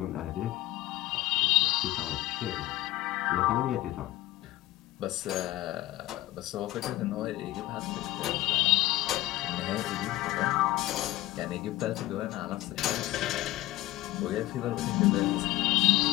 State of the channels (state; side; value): quieter; right; 16.5 dB